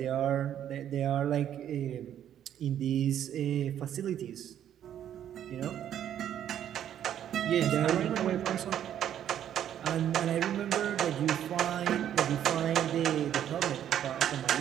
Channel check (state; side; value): quieter; left; 10.4 dB